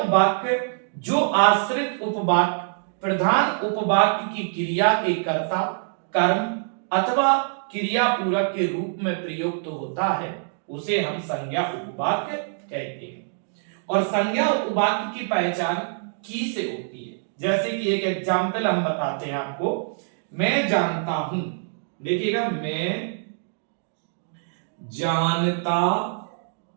जो आश्रित उपवाक्य प्रधान उपवाक्य की क्रिया के कर्ता, कर्म अथवा क्रिया पूरक के रूप में प्रयुक्त होता है उसे हम संज्ञा उपवाक्य कहते हैं। और संज्ञा उपवाक्य की पहचान की से होती है। जैसे कि एक एग्जाम्पल हम बताते हैं आपको। मैं जानता हूं, देखिएगा, मैं जानता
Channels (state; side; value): silent; left; digital silence